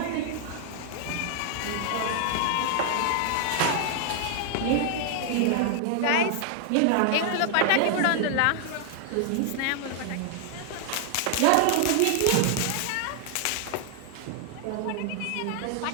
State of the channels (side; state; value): both; different; correlation 0.00